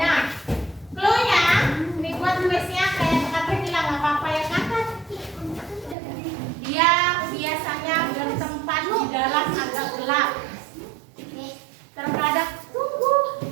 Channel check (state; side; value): drops out; left; at 6.0 s